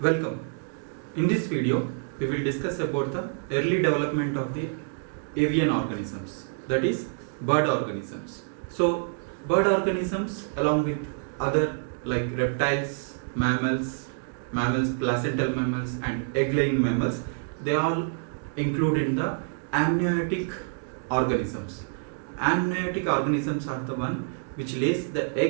Welcome. In this video, we will discuss about the early development of the avian organisms, that is bird organisms. So, bird organisms along with other like reptiles, placental mammals and egg-laying mammals, they all include in the amniotic organisms. Amniotic organisms are the one which lays the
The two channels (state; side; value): silent; left; digital silence